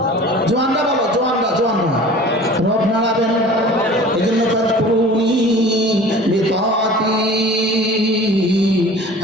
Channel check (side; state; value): both; normal; correlation 0.43